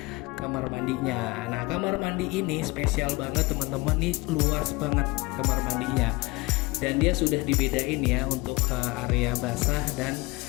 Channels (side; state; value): right; quieter; 23.8 dB